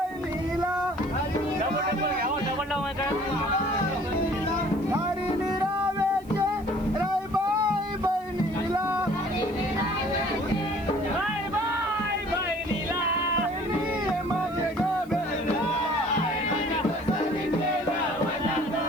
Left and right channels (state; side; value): noise; right; hiss, 26 dB below the sound